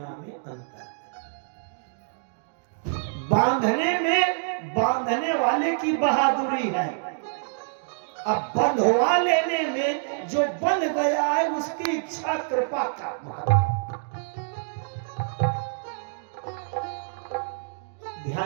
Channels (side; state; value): left; silent; digital silence